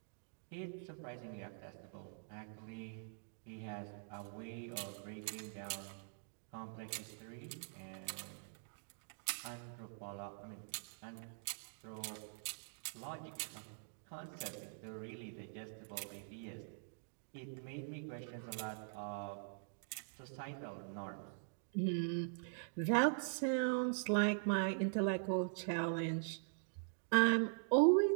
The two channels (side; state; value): left; silent; digital silence